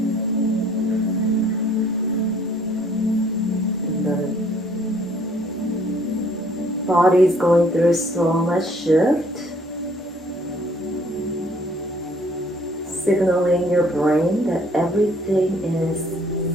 Body's going through so much shift, signaling your brain that everything is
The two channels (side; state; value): both; normal; correlation 0.60